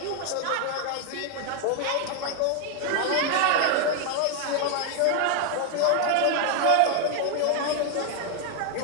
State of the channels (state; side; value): different; both; correlation 0.01